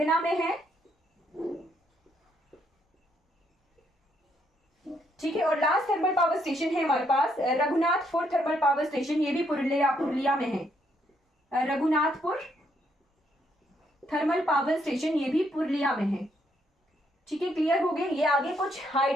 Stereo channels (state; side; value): normal; both; correlation 0.73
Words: में है। ठीक है, और लास्ट थर्मल पावर स्टेशन है हमारे पास रघुनाथपुर थर्मल पावर स्टेशन, ये भी पुरुलिया में है। रघुनाथपुर थर्मल पावर स्टेशन ये भी पुरुलिया में है। ठीक है, क्लियर हो गए। ये आगे कुछ